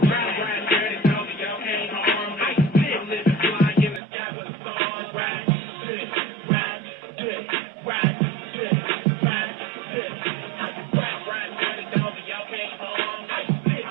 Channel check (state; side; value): drops out; left; at 4.0 s